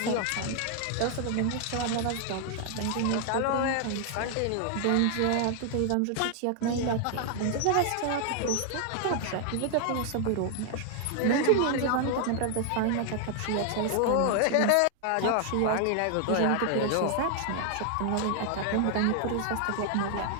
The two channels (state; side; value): different; both; correlation 0.00